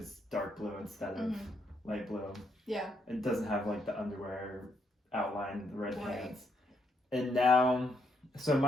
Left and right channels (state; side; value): normal; both; correlation 0.76